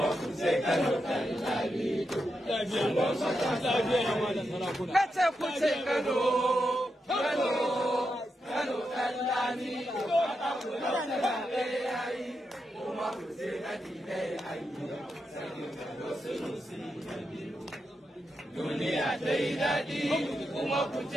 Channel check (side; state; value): both; normal; correlation 0.86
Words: ku ce Kano ɗan lami. Kace ku ce Kano, Kano, Kano ɗan lami. Mata ku ɗautura me yayi, kuma ku ce dalilai an yi. Sarkin Kano Sunusi na biyu. Duniya ta yi daɗi, kuma ku